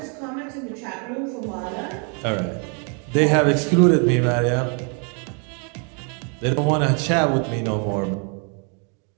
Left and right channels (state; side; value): quieter; left; 38.6 dB